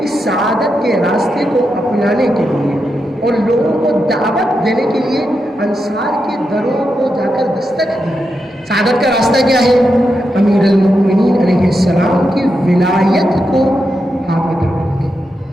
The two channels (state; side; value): normal; both; correlation 0.86